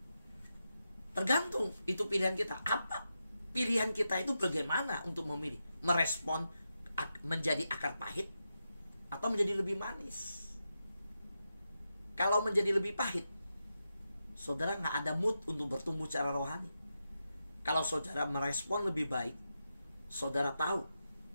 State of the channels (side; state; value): both; inverted; correlation -0.88